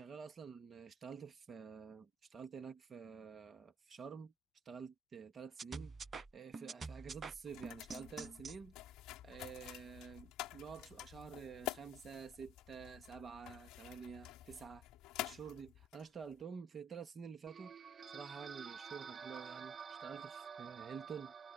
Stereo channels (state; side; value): normal; both; correlation 0.63